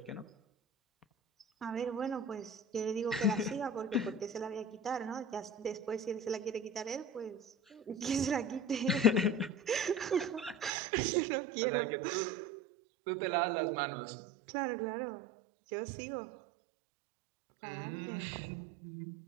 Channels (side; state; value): left; drops out; at 10.7 s